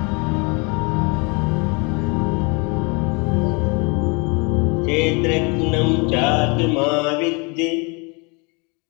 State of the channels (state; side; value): quieter; right; 30.8 dB